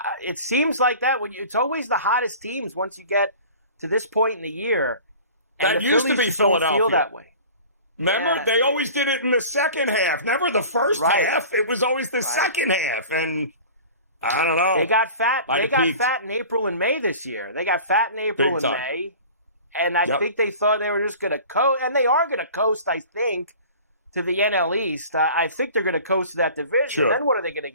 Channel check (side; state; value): both; inverted; correlation -0.41